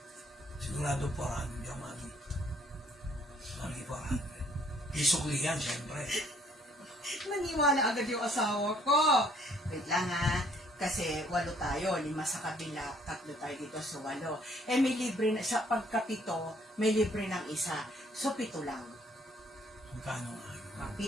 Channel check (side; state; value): both; normal; correlation 0.63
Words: Sigurado 400 yung mami. Mami 400. Isukli yan, siyempre. Naniwala agad yung asawa ko. Wait lang ha. Kasi 8 tayo, 5 sa kabila, 3 tayo dito sa 8. May libre na, sa pagkapito, may libre ng isa. So 7 lang. Magkano nga yun?